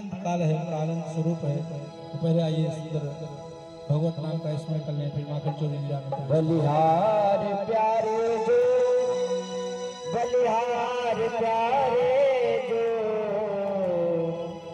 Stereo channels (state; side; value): identical; both; correlation 1.00